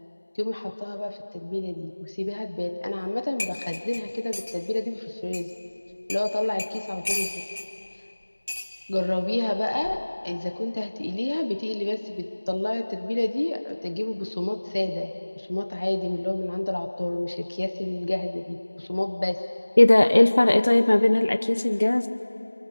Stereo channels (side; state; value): both; inverted; correlation -1.00